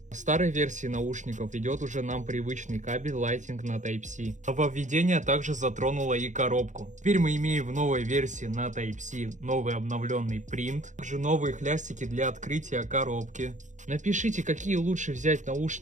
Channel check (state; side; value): late; left; 0.35 ms